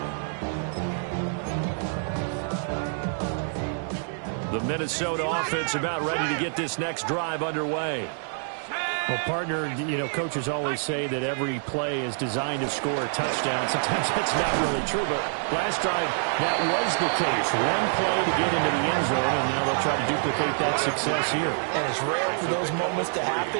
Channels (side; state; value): left; silent; 60 dB below the other